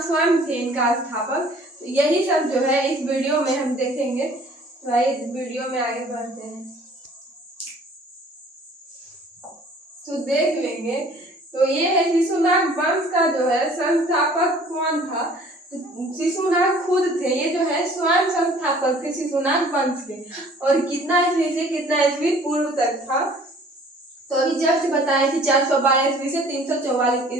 स्वयं थे इनका स्थापक। तो यही सब जो है इस वीडियो में हम देखेंगे। तो आइए वीडियो में आगे बढ़ते हैं तो देख लेंगे। तो ये है शिशुनाग वंश का जो है संस्थापक कौन था। तो शिशुनाग खुद थे, ये जो है स्वयं संस्थापक थे शिशुनाग वंश के। और कितना ईस्वी से कितना ईस्वी पूर्व तक था? तो अभी जस्ट बताएं कि 412 ईस्वी से 344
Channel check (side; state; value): both; normal; correlation 0.53